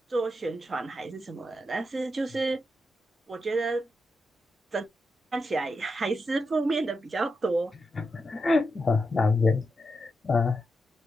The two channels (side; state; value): both; normal; correlation 0.86